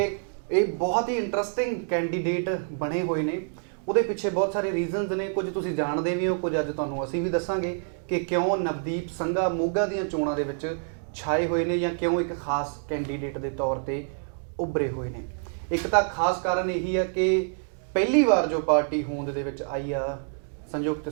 ਇਹ ਬਹੁਤ ਹੀ ਇੰਟਰਸਟਿੰਗ ਕੈਂਡੀਡੇਟ ਬਣੇ ਹੋਏ ਨੇ। ਉਹਦੇ ਪਿੱਛੇ ਬਹੁਤ ਸਾਰੇ ਰੀਜ਼ਨਸ ਨੇ, ਕੁਝ ਤੁਸੀਂ ਜਾਣਦੇ ਵੀ ਹੋ, ਕੁਝ ਅੱਜ ਤੁਹਾਨੂੰ ਅਸੀਂ ਵੀ ਦੱਸਾਂਗੇ ਕਿ ਕਿਉਂ ਨਵਦੀਪ ਸੰਘਾ ਮੋਗਾ ਦੀਆਂ ਚੋਣਾਂ ਦੇ ਵਿੱਚ ਛਾਏ ਹੋਏ ਨੇ ਜਾਂ ਕਿਉਂ ਇੱਕ ਖਾਸ ਕੈਂਡੀਡੇਟ ਦੇ ਤੌਰ ਤੇ ਉੱਭਰੇ ਹੋਏ ਨੇ। ਇੱਕ ਤਾਂ ਖਾਸ ਕਾਰਨ ਇਹੀ ਆ ਕਿ ਪਹਿਲੀ ਵਾਰ ਜੋ ਪਾਰਟੀ ਹੋਂਦ ਦੇ ਵਿੱਚ ਆਈ ਆ ਸੰਯੁਕਤ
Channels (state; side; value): silent; left; digital silence